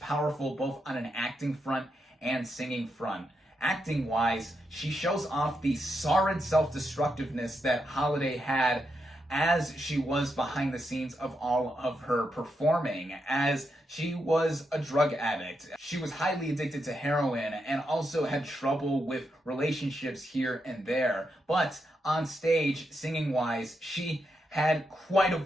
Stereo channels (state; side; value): normal; both; correlation 0.83